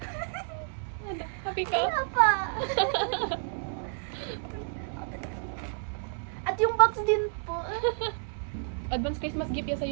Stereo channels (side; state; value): left; silent; 58 dB below the other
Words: Happy ka? Wala pa. At yung box din po. Advance Christmas gift yan